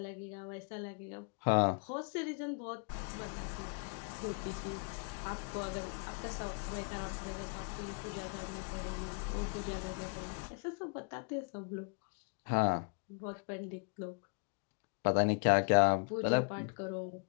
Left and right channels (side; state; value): right; quieter; 38.3 dB